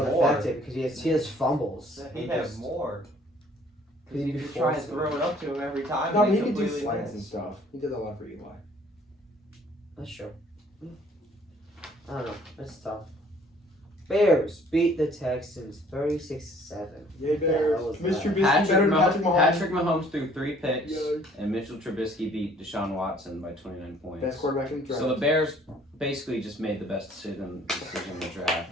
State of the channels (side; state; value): both; normal; correlation 0.58